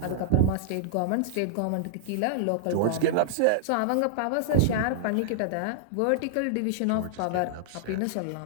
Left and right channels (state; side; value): different; both; correlation -0.01